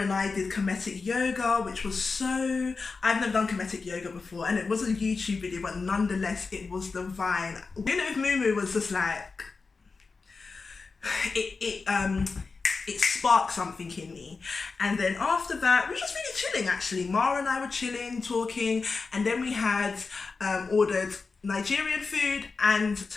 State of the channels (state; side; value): quieter; right; 4.4 dB